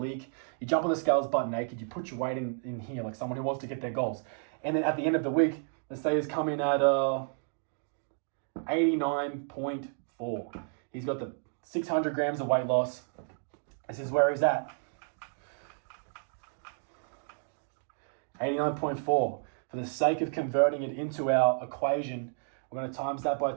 you jump on the scales butt naked, you put your weight in here like someone who wants to get their goals. And then at the end of the week, let's say he's coming at 89.4. He's got the 600 grams of weight loss. This is where he's at. 89.4. For the sake of converting it into our equation, we're going to times that by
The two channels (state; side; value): silent; left; 57 dB below the other